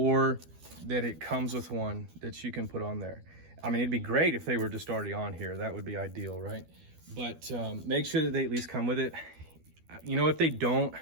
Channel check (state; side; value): late; left; 12 ms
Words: that it comes with one that you can put on there. I mean, it'd be great if they were just already on here. That would be ideal, right? But make sure that they at least come with it. You know, if they don't,